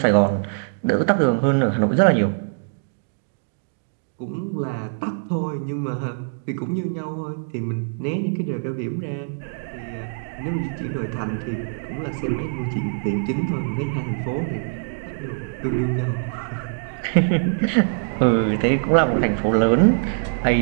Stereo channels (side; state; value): left; silent; digital silence